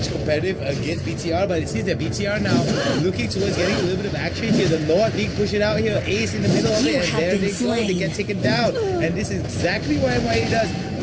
competitive against BTR, but it seems that BTR now looking towards getting a little bit of action here. The Lord League push it out here, Ace in the middle of it, and there they go, they get taken down. And this is exactly what MYA does.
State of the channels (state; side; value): identical; both; correlation 1.00